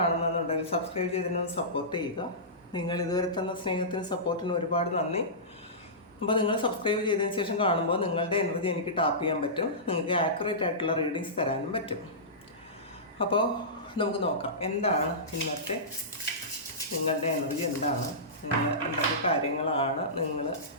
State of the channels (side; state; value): both; normal; correlation -0.20